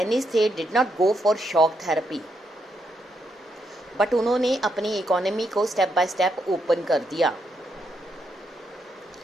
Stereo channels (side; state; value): both; normal; correlation 0.79